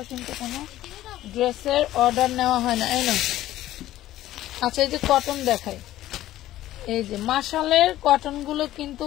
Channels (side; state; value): right; quieter; 14.3 dB